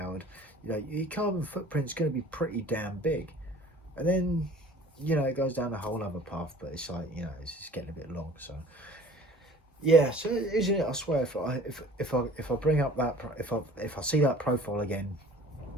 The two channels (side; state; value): both; normal; correlation 0.47